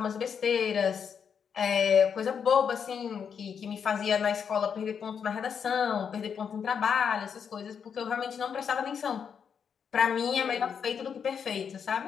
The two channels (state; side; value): quieter; right; 7.1 dB